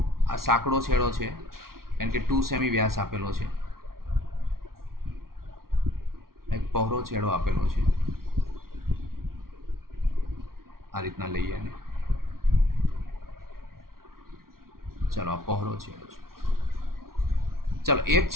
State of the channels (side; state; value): left; late; 0.93 ms